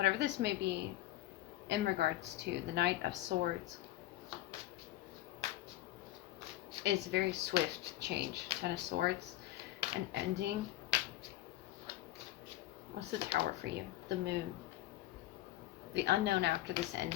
this may be in regards to the Knight of Swords is very swift change. Ten of Swords, an ending. What's the Tower for you? The Moon. The unknown after this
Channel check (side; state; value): right; quieter; 15.3 dB